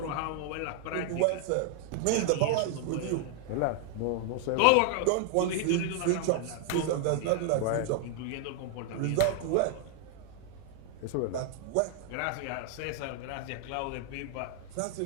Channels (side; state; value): both; different; correlation 0.00